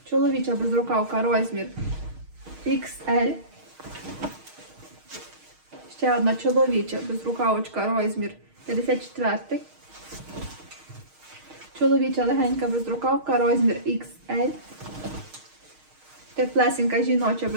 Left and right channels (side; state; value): left; late; 6.4 ms